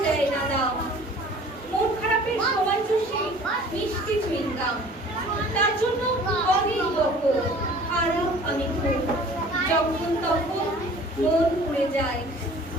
দেয় না দাম, মন খারাপের সময় চষে মিষ্টি চুইংগাম। তার জন্য অনেক বকো, খারাপ আমি খুব, যখন তখন মন উড়ে যায়,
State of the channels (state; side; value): normal; both; correlation 0.48